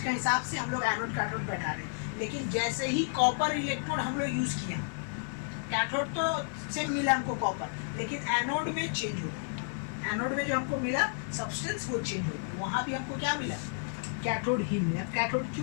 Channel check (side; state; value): right; silent; digital silence